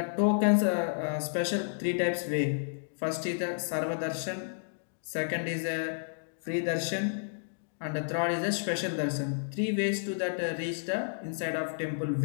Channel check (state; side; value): silent; right; digital silence